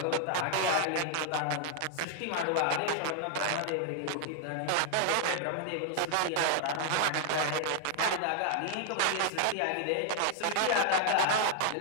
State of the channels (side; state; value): both; different; correlation 0.00